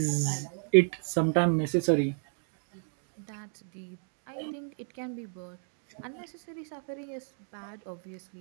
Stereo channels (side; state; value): left; silent; 56 dB below the other